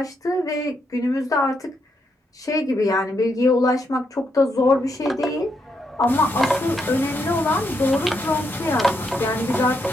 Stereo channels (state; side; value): normal; both; correlation 0.79